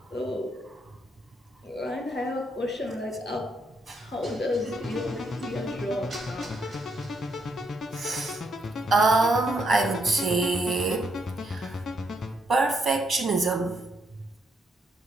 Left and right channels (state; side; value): normal; both; correlation 0.75